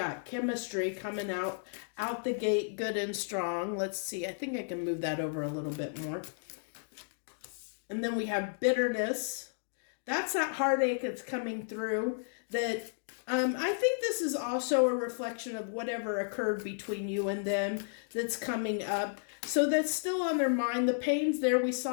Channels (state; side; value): silent; right; digital silence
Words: Chemistry coming out the gate, good and strong. Let's see. I think I can move that over a little bit more. And then we have bitterness. That's that heartache that's coming through. That I think this is also a reflection of whatever occurred between you and them that's coming up. So that's still on their mind. The pain's there. We